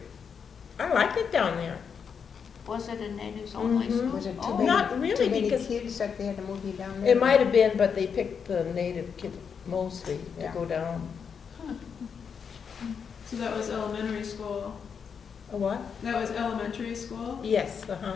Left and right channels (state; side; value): quieter; right; 6.6 dB